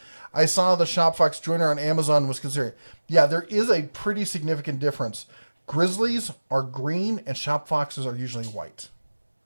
I saw the Shopfox joiner on Amazon was considered. Yeah, there is a pretty significant difference. Grizzlies are green and Shopfoxes are usually white.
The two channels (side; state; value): both; inverted; correlation -1.00